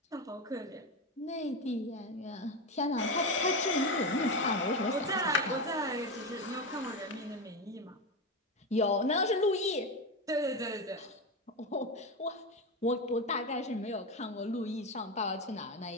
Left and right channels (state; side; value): normal; both; correlation 0.16